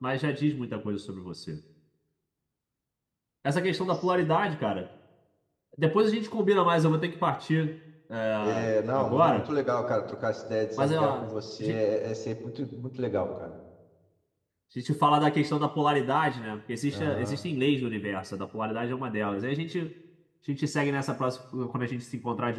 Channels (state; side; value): identical; both; correlation 1.00